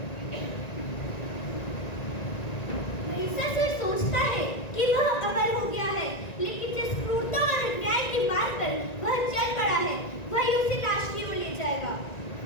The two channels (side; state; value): right; late; 1.9 ms